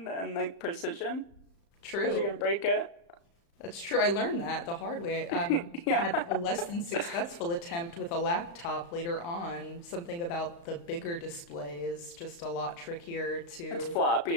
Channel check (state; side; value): late; right; 35 ms